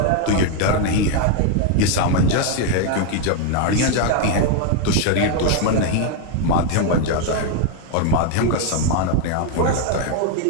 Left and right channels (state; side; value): different; both; correlation 0.01